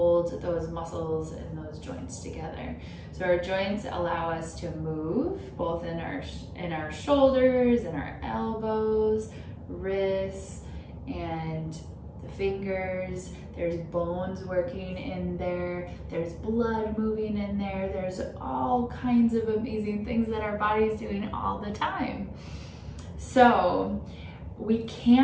those muscles and those joints together. So our joints allow us to move both in our shoulders and our elbows, wrists, and the fingers. There's bones working in there, there's blood moving in there, there's all kinds of amazing things that our body is doing all the time. So we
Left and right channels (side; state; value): both; identical; correlation 1.00